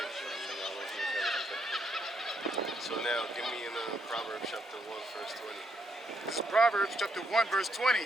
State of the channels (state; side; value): normal; both; correlation 0.75